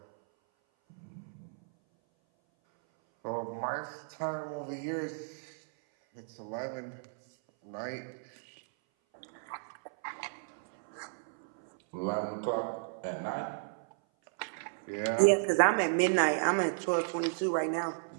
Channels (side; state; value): left; silent; 55 dB below the other